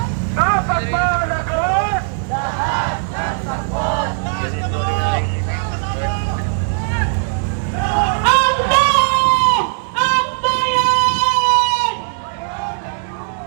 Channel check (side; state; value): left; silent; 67 dB below the other